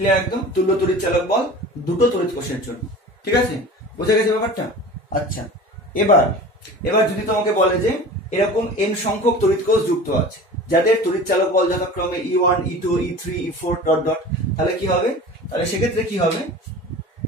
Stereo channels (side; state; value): both; normal; correlation 0.37